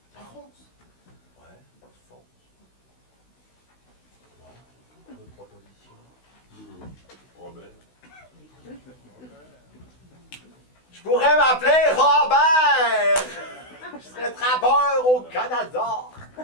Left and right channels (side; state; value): right; late; 16 ms